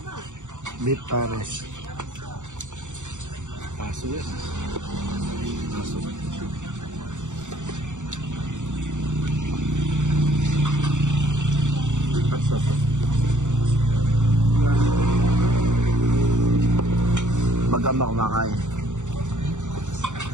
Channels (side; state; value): left; late; 0.85 ms